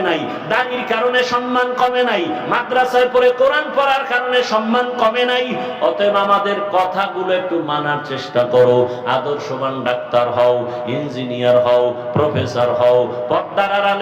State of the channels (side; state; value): both; identical; correlation 1.00